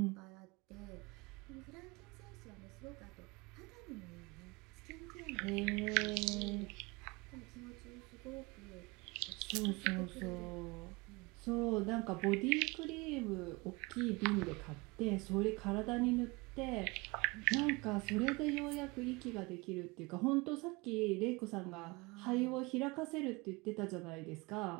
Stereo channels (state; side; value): quieter; left; 25.6 dB